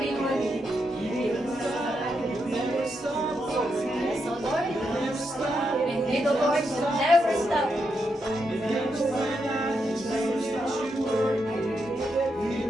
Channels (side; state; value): both; normal; correlation 0.82